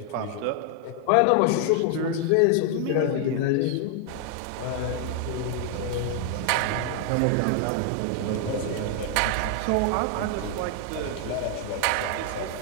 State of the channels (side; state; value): both; different; correlation 0.00